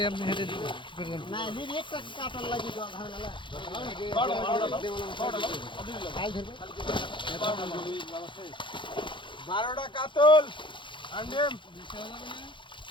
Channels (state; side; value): late; right; 0.23 ms